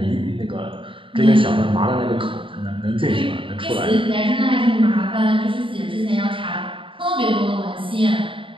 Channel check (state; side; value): late; left; 0.25 ms